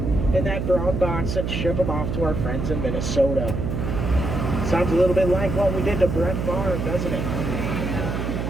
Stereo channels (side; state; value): right; noise; hum, 2 dB below the sound